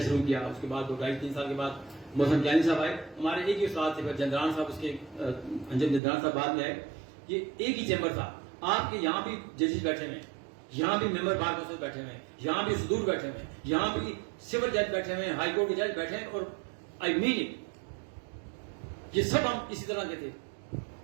شروع کیا. اس کے بعد 2-2.5-3 سال کے بعد محسن جانی صاحب آئے، ہمارے ایک ہی استاد تھے. پھر جندران صاحب، اس کے انجم جندران صاحب بعد میں آئے. یہ ایک ہی چیمبر تھا. آپ کے یہاں بھی ججز بیٹھے ہوئے ہیں، یہاں بھی ممبر بار کونسل بیٹھے ہوئے ہیں، یہاں بھی صدور بیٹھے ہوئے ہیں، یہاں بھی سول جج بیٹھے ہوئے ہیں، ہائی کورٹ کے جج بیٹھے ہیں. اور آئی مین اٹ، یہ سب ہم اسی طرح کے تھے.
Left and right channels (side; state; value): left; drops out; at 6.0 s